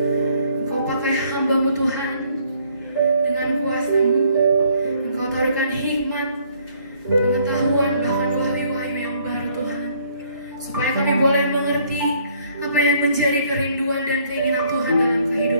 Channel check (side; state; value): both; inverted; correlation -0.64